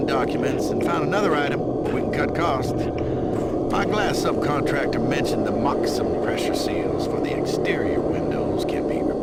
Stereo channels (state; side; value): noise; left; hum, 21 dB below the sound